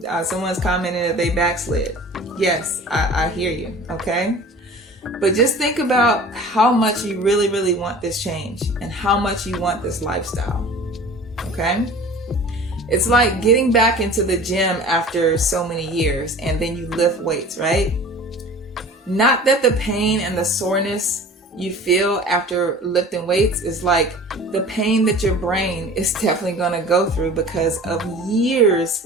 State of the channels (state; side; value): normal; both; correlation 0.42